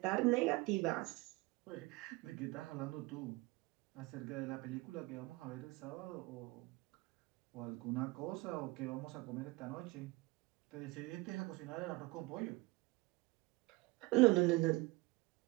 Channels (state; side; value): quieter; left; 22.9 dB